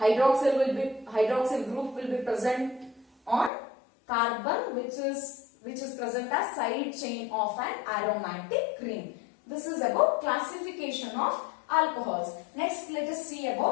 group will be present on carbon, which is present as side chain of an aromatic ring. This is about classification of alcohols. Next, let us see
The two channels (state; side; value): drops out; right; at 3.5 s